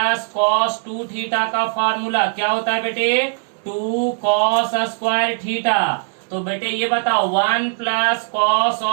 कॉस 2 थीटा का फार्मूला क्या होता है बेटे, 2 कॉस स्क्वायर थीटा। तो बेटे ये बताओ 1 plus cos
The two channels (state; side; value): silent; left; 66 dB below the other